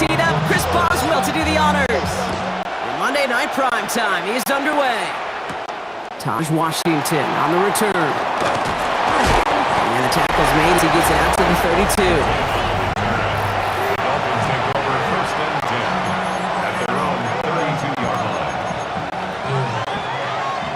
up, Chris Boswell to do the honors. And Monday Night Prime Time is underway. Taj Washington on the return. And the tackle's made as he gets it out to the 32. Dolphins take over first and 10 at their own 32-yard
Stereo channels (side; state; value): both; identical; correlation 1.00